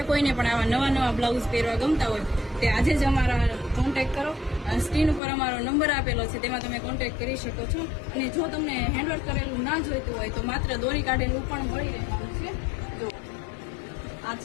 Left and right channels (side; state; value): right; drops out; at 5.2 s